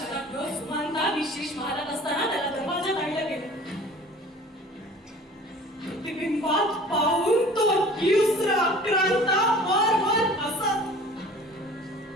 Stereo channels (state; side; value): normal; both; correlation 0.46